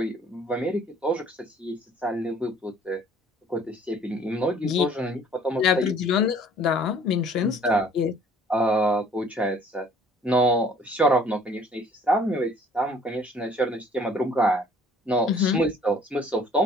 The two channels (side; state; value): both; normal; correlation 0.55